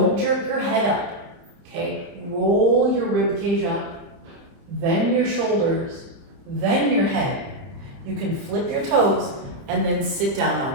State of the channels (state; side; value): late; left; 30 ms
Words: jerk your head up, okay? Roll your rib cage up, then your shoulders, then your head. You can flip your toes and then sit down